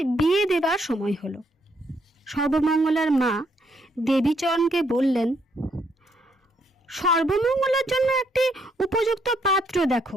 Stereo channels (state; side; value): normal; both; correlation 0.73